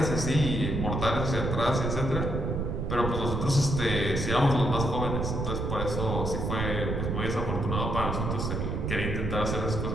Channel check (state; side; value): noise; right; rumble, 1 dB below the sound